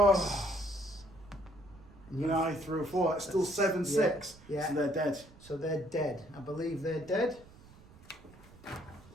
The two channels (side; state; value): right; noise; rumble, 22 dB below the sound